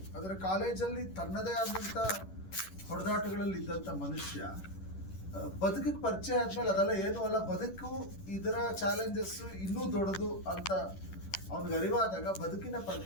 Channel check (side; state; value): right; late; 11 ms